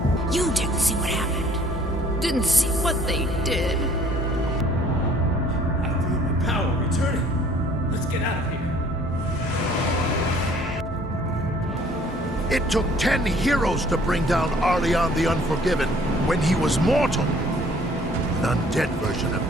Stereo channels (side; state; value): both; normal; correlation 0.56